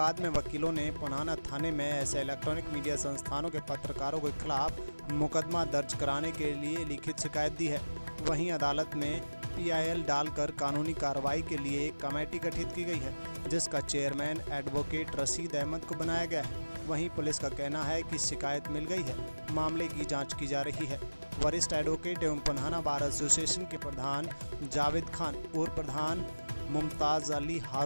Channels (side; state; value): both; inverted; correlation -1.00